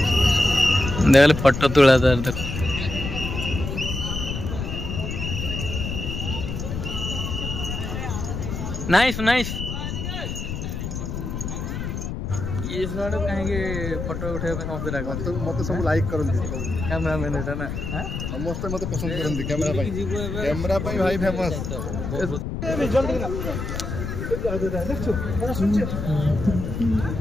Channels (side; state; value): left; noise; rumble, 4 dB below the sound